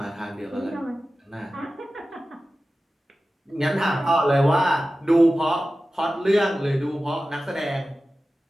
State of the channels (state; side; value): normal; both; correlation 0.95